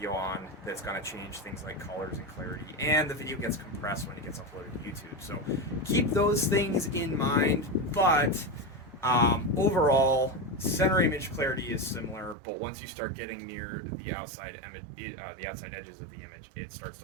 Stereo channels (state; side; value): drops out; left; at 12.4 s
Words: on, that's going to change things like colors and clarity, and the video gets compressed when it gets uploaded to YouTube. So keep those things in mind, but overall, center image clarity is similar, but once you start getting near the outside the outside edges of the image, it starts to